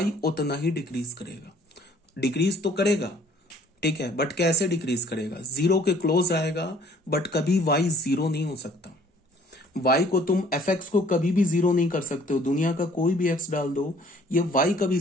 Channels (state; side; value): normal; both; correlation 0.57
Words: उतना ही डिक्रीज करेगा। डिक्रीज तो करेगा, ठीक है, बट कैसे डिक्रीज करेगा, 0 के क्लोज आएगा, बट कभी y 0 नहीं हो सकता। y को तुम fx को कभी भी 0 नहीं कर सकते हो, दुनिया का कोई भी x डाल दो, ये y कभी